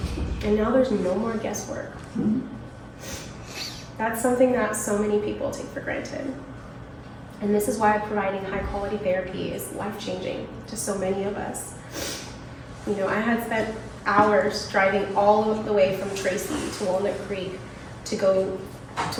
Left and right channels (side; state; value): both; identical; correlation 1.00